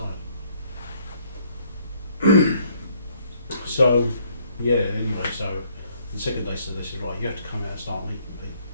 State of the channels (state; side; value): inverted; both; correlation -0.65